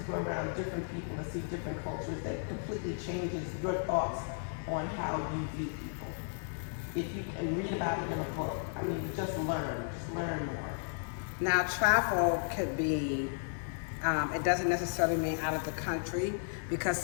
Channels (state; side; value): silent; right; digital silence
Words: go around different people and see different cultures, that completely changes your thoughts on how you view people. If you can read about it in a book, just learn more. Now, travel could be, it doesn't necessarily mean out of the country, because